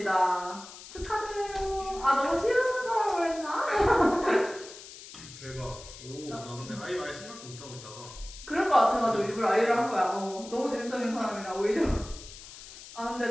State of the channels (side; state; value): left; noise; hiss, 16 dB below the sound